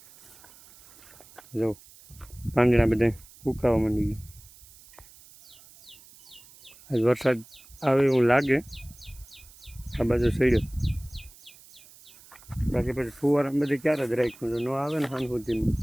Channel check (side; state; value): right; noise; hiss, 23 dB below the sound